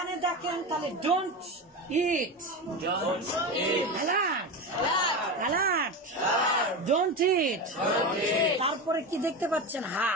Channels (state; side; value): normal; both; correlation 0.21